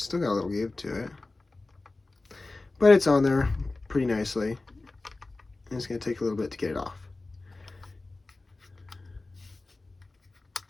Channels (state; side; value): quieter; right; 3.3 dB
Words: got a little give to it, but it's on there pretty nicely. And it's going to take a little bit to get it off.